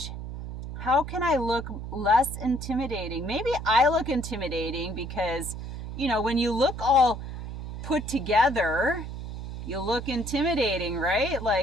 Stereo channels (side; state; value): right; noise; hum, 8 dB below the sound